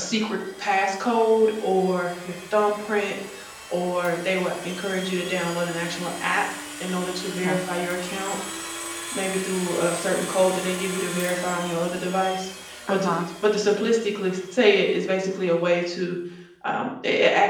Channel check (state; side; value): identical; both; correlation 1.00